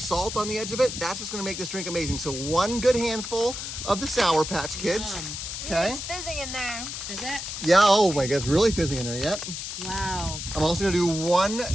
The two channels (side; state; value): left; noise; hiss, 6 dB below the sound